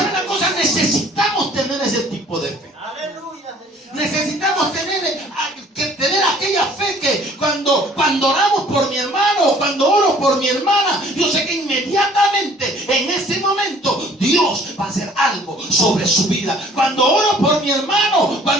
la cosa? Necesitamos tener ese tipo de fe. Aleluya. Necesitamos tener aquella fe que cuando oramos por mi hermano o cuando oro por mi hermana, yo sé que inmediatamente en ese momento Dios va a hacer algo sobre su vida. Cuando oro por mi hermano,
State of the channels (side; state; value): both; normal; correlation 0.54